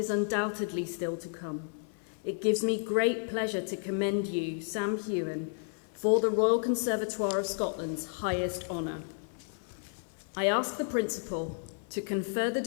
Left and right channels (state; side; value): silent; right; 56 dB below the other